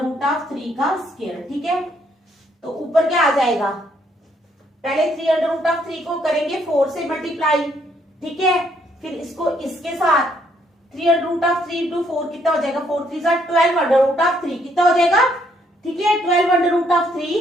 root of 3 का स्क्वायर, ठीक है। तो ऊपर क्या आ जाएगा, पहले 3 अंडर रूट ऑफ 3 को करेंगे 4 से मल्टीप्लाई, ठीक है, फिर इसको इसके साथ 3 अंडर रूट ऑफ 3 इंटू 4 कितना हो जाएगा, 4 3 12 अंडर रूट ऑफ 3 कितना हो जाएगा, ठीक है, 12 under root of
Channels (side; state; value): both; normal; correlation 0.70